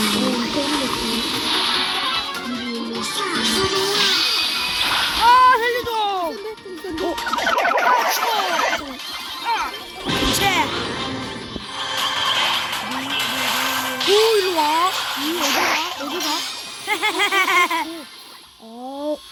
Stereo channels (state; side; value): identical; both; correlation 1.00